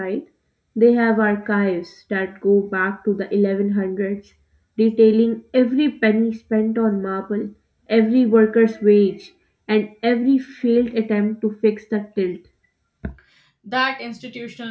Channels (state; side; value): identical; both; correlation 1.00